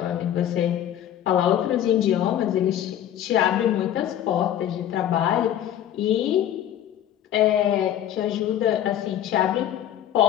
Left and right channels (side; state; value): right; quieter; 11.1 dB